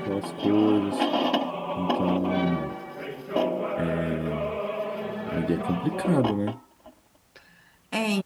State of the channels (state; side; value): identical; both; correlation 1.00